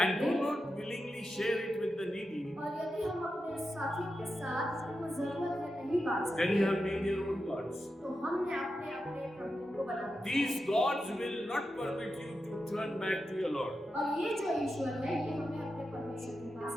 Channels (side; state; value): both; normal; correlation 0.89